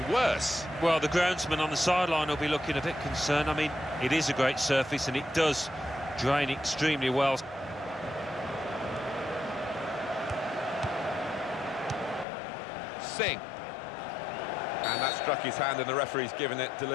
worse. Well, the groundsman on the sideline will be looking a bit concerned. I mean, it is a great surface and it does drain extremely well. Singh. And that struck his hand, and the referee's given it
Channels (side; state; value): right; drops out; at 12.2 s